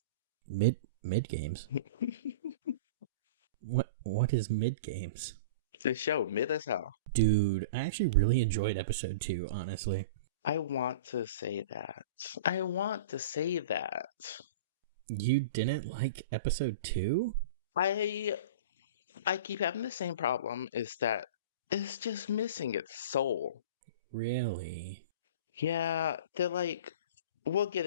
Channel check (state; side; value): inverted; both; correlation -0.34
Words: Mid games. What is mid games? The show, mid as hell. Dude, I actually really enjoyed episode 2, honestly. I want to say that. I want to say that. You didn't like episode 2? I I keep having the same problem is that it's just missing its soul. Really? Yeah, they're like we'll get